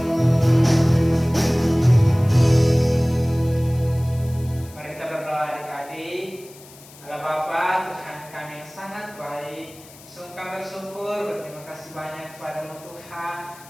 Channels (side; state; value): left; noise; hiss, 21 dB below the sound